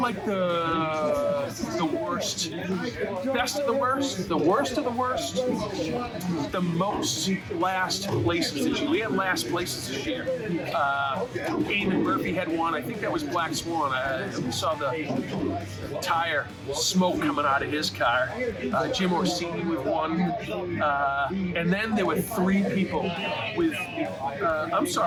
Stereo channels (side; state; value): both; identical; correlation 1.00